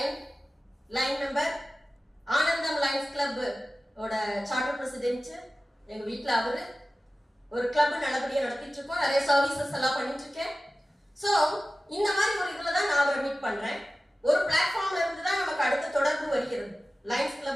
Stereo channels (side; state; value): both; normal; correlation 0.96